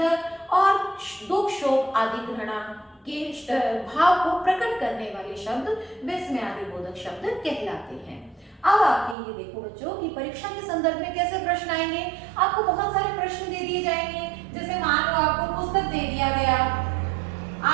और दुख शोक आदि घृणा के भाव को प्रकट करने वाले शब्द विस्मय आदि बोधक शब्द कहलाते हैं। अब आपके ये देखो बच्चों कि परीक्षा के संदर्भ में कैसे प्रश्न आएंगे। आपको बहुत सारे प्रश्न दे दिए जाएंगे, जैसे मान लो आपको पुस्तक दे दिया गया,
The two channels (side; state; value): left; drops out; at 9.2 s